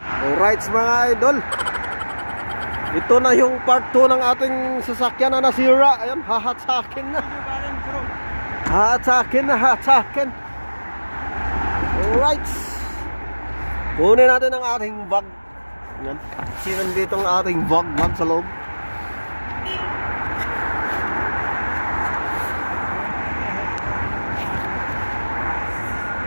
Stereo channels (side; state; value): both; inverted; correlation -1.00